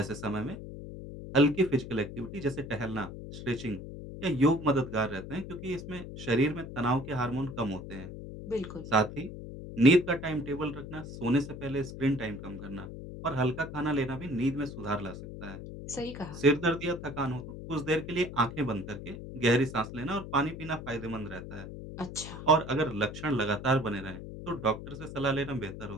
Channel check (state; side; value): noise; left; hum, 10 dB below the sound